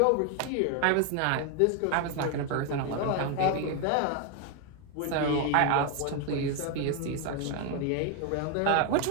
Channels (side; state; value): both; different; correlation 0.01